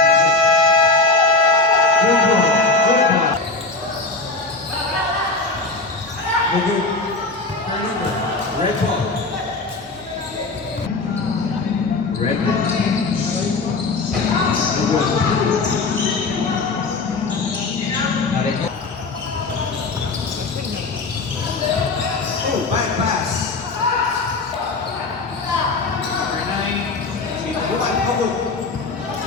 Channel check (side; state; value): right; quieter; 3.6 dB